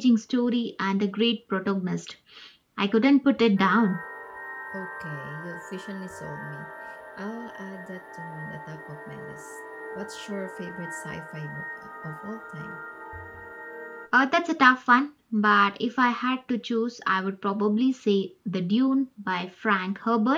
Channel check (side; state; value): both; identical; correlation 1.00